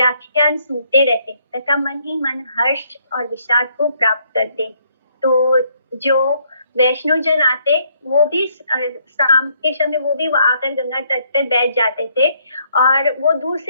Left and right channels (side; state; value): both; inverted; correlation -0.69